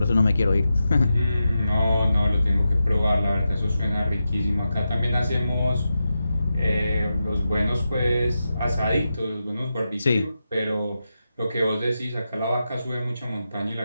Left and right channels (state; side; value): inverted; both; correlation -0.89